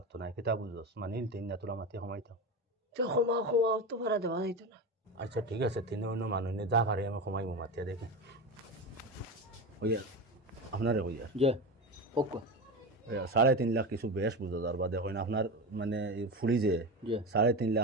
না কিতা বুঝোস মানিল তিন না তোরা মাতি সময়তাম তো ক্ষমা তো ভাড়া দেওয়া যাইতো না। আচ্ছা ঠিক আছে তিন অন্য মানুষ নিয়ে যা পারে আমি সময় মাতিয়া দেখে হইয়া আপনারে হইয়া জি ওকে 3.5 লাখ কিছু বেশ বুঝা যার বাদে হয় না আপনার মানে ফুলি যে জি 3.5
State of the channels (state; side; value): normal; both; correlation 0.22